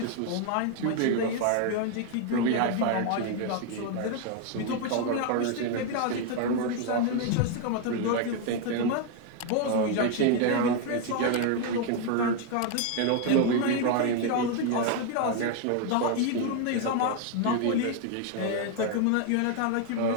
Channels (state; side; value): different; both; correlation 0.01